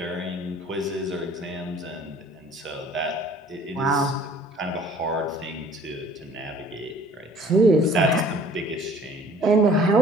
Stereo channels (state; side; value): normal; both; correlation 0.53